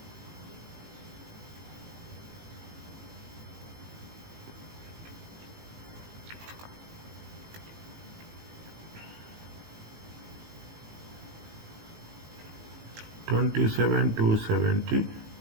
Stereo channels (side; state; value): left; late; 18 ms